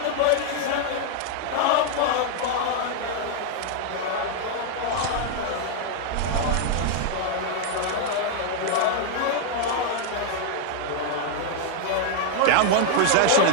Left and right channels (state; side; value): different; both; correlation 0.00